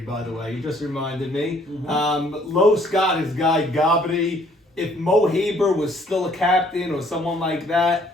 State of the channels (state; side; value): normal; both; correlation 0.62